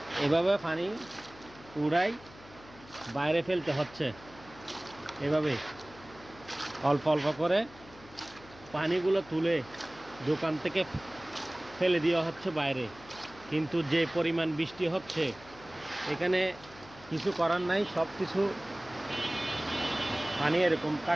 এভাবে পানি উড়াই বাইরে ফেলতে হচ্ছে। এভাবে অল্প অল্প করে পানিগুলো তুলে দোকান থেকে ফেলে দেওয়া হচ্ছে বাইরে। কিন্তু যে পরিমাণ বৃষ্টি হচ্ছে, এখানে কিছু করার নাই, সব কিছু পানি এরকম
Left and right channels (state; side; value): noise; left; hum, 21 dB below the sound